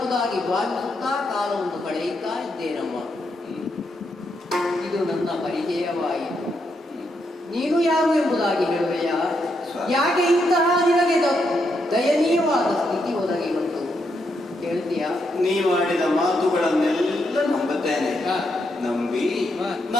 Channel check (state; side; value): normal; both; correlation 0.80